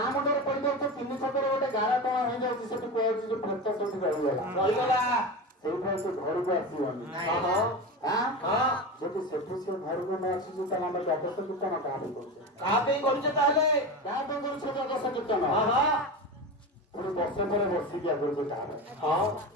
ମୁଣ୍ଡରେ ପଡ଼ିଯାଉଛି 3 ଛକରେ ଗୋଟେ ଗାରା ଟଣା ହେଇଯାଉଛି ସେଠି କୁହାଯାଉଛି ଯେ ପ୍ରେତ ସେଠି ରହିଗଲା ରହିଗला ସେଇଠାରୁ ସେ ଘରକୁ ଆସିବନି। हाँ ଯଦି ସେଠୁ ସେ ଘରକୁ ନ ଆସୁଛି ତାହେଲେ ଆମେ ଦ୍ୱାଦଶ କୀର୍ତ୍ତନ କାହା ପାଇଁ କରୁଛେ? कहाँ पे करूचे ताले କାହା ପାଇଁ କରୁଛେ ଦ୍ୱାଦଶ କୀର୍ତ୍ତନ? हाँ ପୁଣି ବର୍ଷେ ପରେ ବର୍ଷିକିଆ କରୁଛେ କାହା ପାଇଁ? हाँ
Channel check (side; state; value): both; normal; correlation 0.24